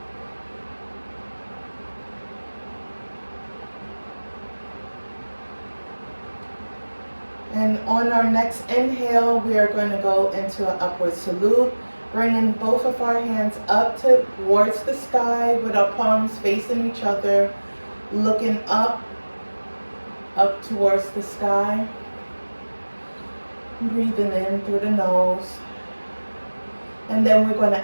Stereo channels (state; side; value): inverted; both; correlation -1.00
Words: And on our next inhale, we are going to go into an upward salute, bringing both of our hands up towards the sky with our palms facing each other, looking up towards the sky. Breathing in through the nose. And then we're going